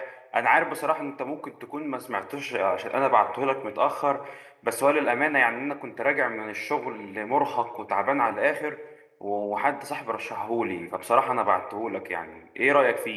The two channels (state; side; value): identical; both; correlation 1.00